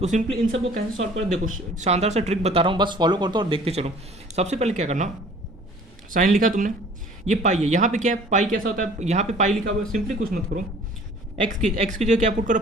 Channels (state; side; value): normal; both; correlation 0.50